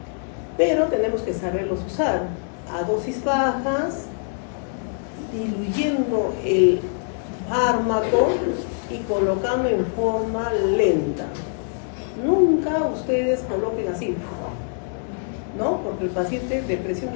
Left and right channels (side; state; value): right; silent; 63 dB below the other